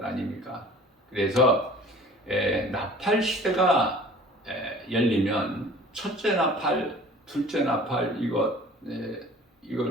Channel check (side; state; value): both; normal; correlation 0.46